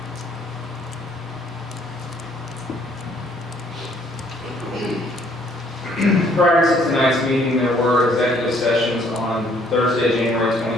Prior to tonight's meeting, there were executive sessions on Thursday, January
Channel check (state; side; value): normal; both; correlation 0.63